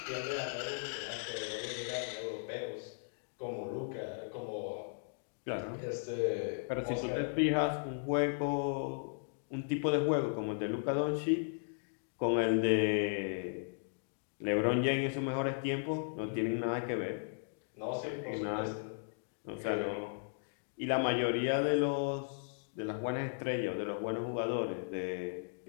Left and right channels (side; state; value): right; silent; digital silence